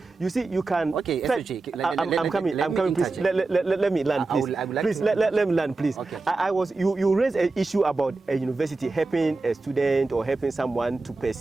you see you can. Okay, I'm coming. Please let me land, please. Please let me land, please. Okay. You raised an issue about a university helping a student or helping someone to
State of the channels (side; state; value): left; quieter; 3.5 dB